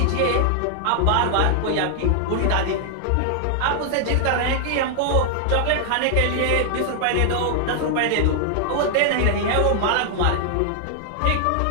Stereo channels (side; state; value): both; different; correlation 0.00